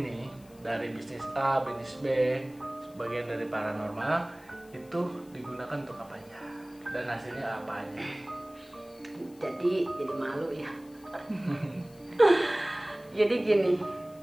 dari bisnis A, bisnis B, sebagian dari paranormal, itu digunakan untuk apa aja dan hasilnya apa aja? Jadi malu ya. Jadi gini,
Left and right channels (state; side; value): noise; left; hiss, 26 dB below the sound